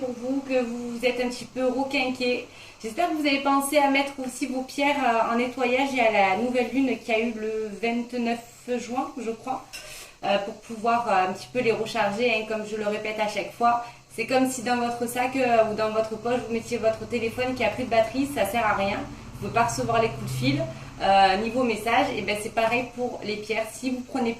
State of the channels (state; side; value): identical; both; correlation 1.00